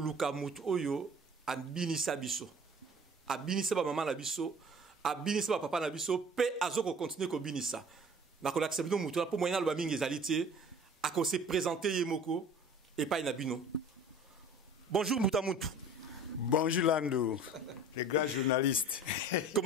Mutu Oyo, à Binissa Biso. À Binissa Maman Nabiso. A binisa papa na biso pe azoko continuer ko binisa na ko accepter mutu pour moyen lo bamingi ezalité a ko se présenter yemoko et pas na bino. Bonjour Moutamutu. Bonjour Lando, le grand journaliste.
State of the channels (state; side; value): normal; both; correlation 0.46